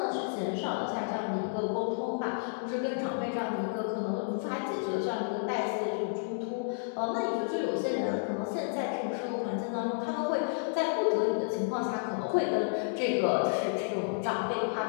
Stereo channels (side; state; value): right; silent; digital silence